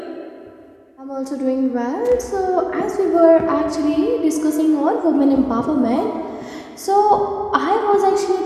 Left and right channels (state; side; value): identical; both; correlation 1.00